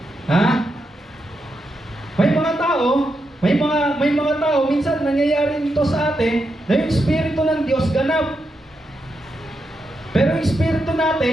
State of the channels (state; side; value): normal; both; correlation 0.84